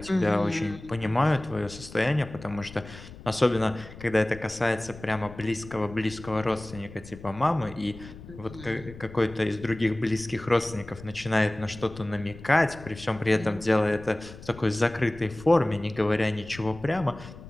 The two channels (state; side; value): noise; left; rumble, 16 dB below the sound